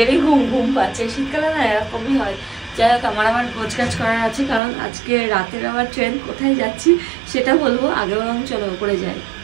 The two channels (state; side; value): drops out; left; at 4.6 s